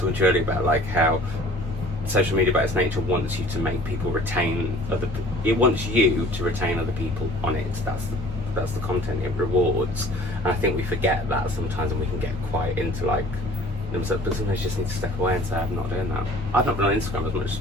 to you earlier about like how social media by its nature wants you to make people retain it wants you to retain other people on it. That's the content it rewards. And I think we forget that sometimes, and we can get quite into like, but sometimes you just need to step away and say, I'm not doing that. I've not been on Instagram as much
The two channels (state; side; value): normal; both; correlation 0.50